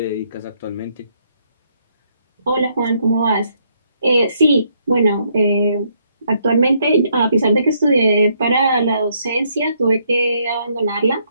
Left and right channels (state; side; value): inverted; both; correlation -0.72